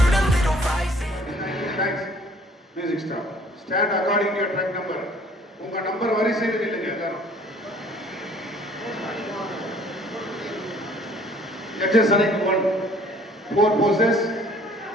a little rising. Thanks. Music stop. Stand according to your track number. உங்க நம்பர் வரிசையில் இல்லைங்க எல்லாரும். Judges select 1. 4 poses.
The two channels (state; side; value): normal; both; correlation 0.55